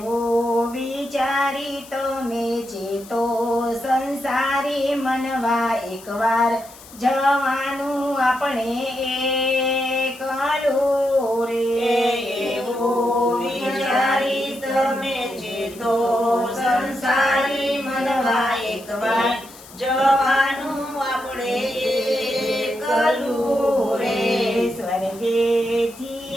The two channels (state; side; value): noise; left; hiss, 20 dB below the sound